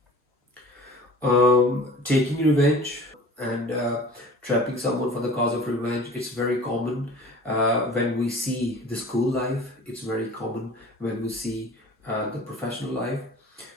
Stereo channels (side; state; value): both; normal; correlation 0.42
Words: Taking revenge and trapping someone for the cause of revenge, it's very common when we see the school life. It's very common when we see the professional life.